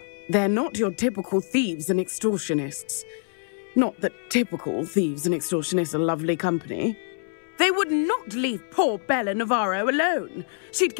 They're not your typical thieves and extortionists. Not that typical thieves and extortionists are lovely company. They would not leave poor Bella Navarro alone. She'd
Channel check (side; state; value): right; silent; 62 dB below the other